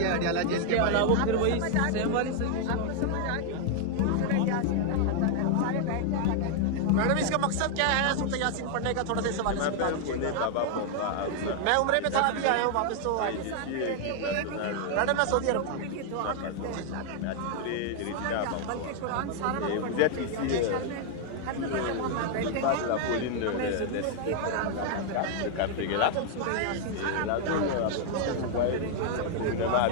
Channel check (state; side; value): different; both; correlation 0.00